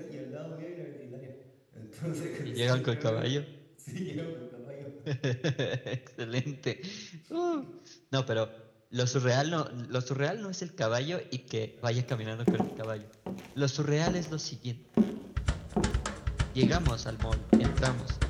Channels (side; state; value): both; identical; correlation 1.00